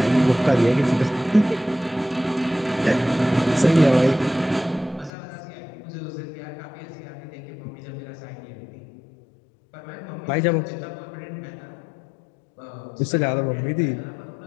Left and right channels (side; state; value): right; drops out; at 5.1 s